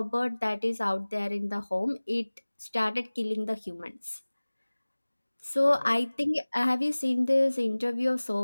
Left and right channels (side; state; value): both; inverted; correlation -1.00